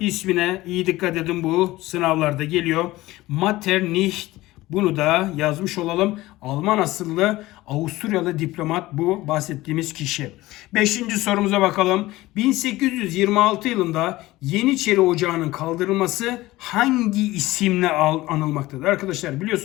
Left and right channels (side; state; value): right; quieter; 18.0 dB